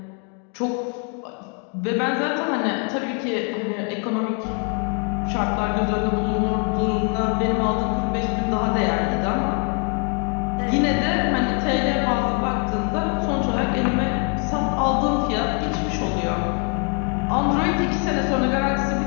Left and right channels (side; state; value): right; quieter; 38.4 dB